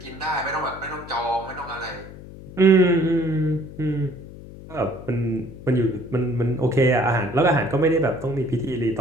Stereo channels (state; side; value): noise; left; hum, 15 dB below the sound